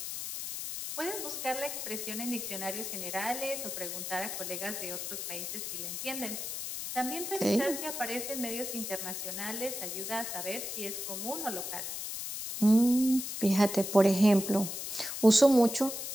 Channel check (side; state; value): left; noise; hiss, 5 dB below the sound